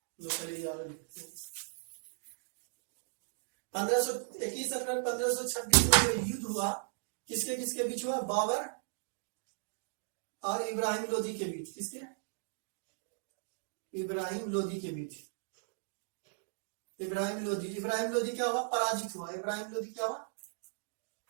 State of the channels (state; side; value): silent; left; digital silence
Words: 21 अप्रैल 1526 में जो युद्ध हुआ, किसके किसके बीच हुआ, बाबर और इब्राहिम लोधी के बीच। किसके, इब्राहिम लोधी के बीच। इब्राहिम लोधी क्या हुआ, पराजित हुआ। इब्राहिम